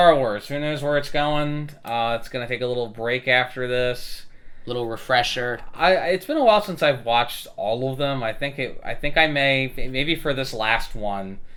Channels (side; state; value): both; identical; correlation 1.00